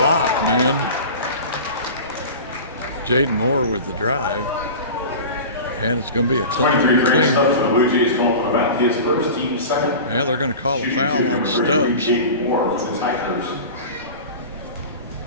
man. Jaden Moore with the drive. And it's going to be a clean. The Bluejays calling about his first team second. Yeah, they're going to call a foul on Stubbs.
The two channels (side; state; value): both; inverted; correlation -0.33